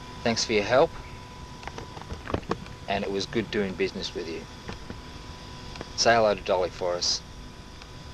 Thanks for your help, and it was good doing business with you. Say hello to Dolly for us.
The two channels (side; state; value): both; identical; correlation 1.00